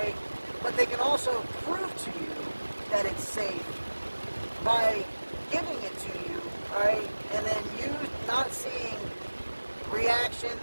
But they can also prove to you that it's safe by giving it to you, alright? And then you not seeing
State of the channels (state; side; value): inverted; both; correlation -1.00